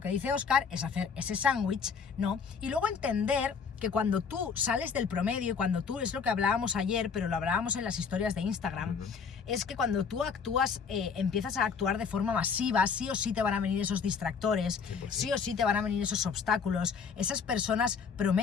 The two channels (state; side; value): quieter; right; 5.9 dB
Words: que dice Óscar, es hacer ese sándwich, ¿no? Y luego entender que cuando tú sales del promedio, cuando tú, es lo que hablábamos ayer, pero lo hablábamos en las historias de Instagram, es que cuando tú actúas, empiezas a actuar de forma masiva, sí o sí te van a venir esos distractores, 100%. Sí o sí te van a venir esos obstáculos, esas personas